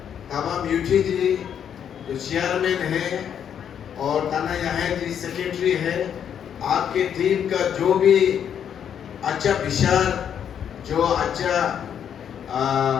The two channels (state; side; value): quieter; right; 8.7 dB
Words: तमाम यूटी जी जो चेयरमैन है और ताना यहाँ जी सेक्रेटरी है, आपके टीम का जो भी अच्छा विचार, जो अच्छा